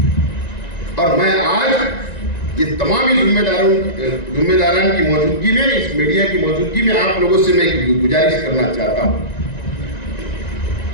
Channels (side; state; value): right; late; 1.9 ms